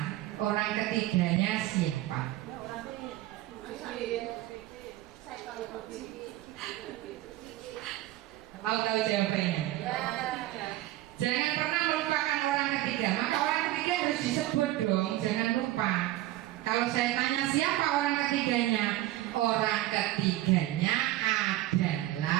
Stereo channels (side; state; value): left; quieter; 15.7 dB